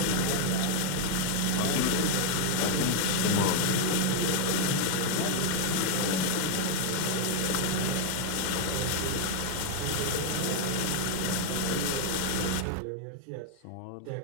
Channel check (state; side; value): different; both; correlation 0.00